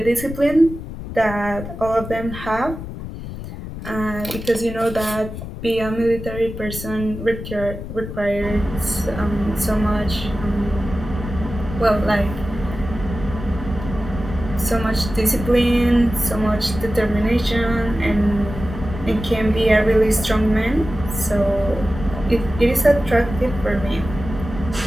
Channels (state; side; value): noise; left; rumble, 9 dB below the sound